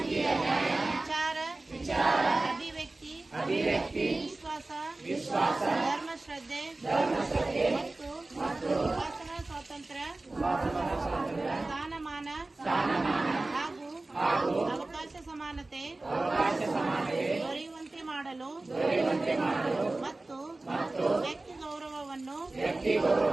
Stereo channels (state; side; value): quieter; left; 3.0 dB